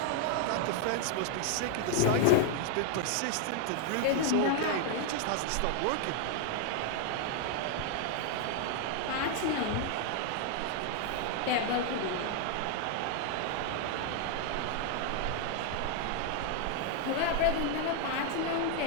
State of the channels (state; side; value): different; both; correlation 0.00